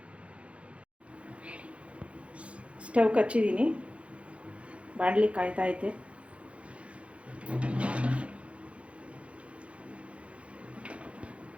ಸ್ಟವ್ ಹಚ್ಚಿದ್ದೀನಿ, ಬಾಣಲಿ ಕಾಯ್ತೈತೆ.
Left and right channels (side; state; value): left; late; 0.062 ms